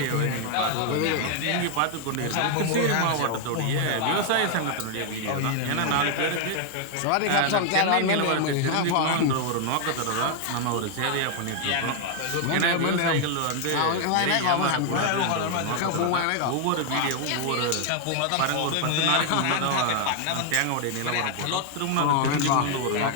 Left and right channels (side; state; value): both; different; correlation 0.00